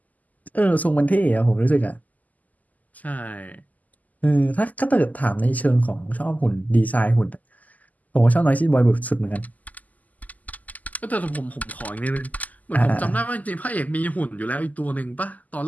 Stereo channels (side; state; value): right; late; 0.079 ms